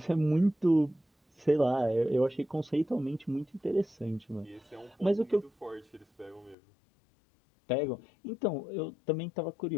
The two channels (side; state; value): right; drops out; at 6.6 s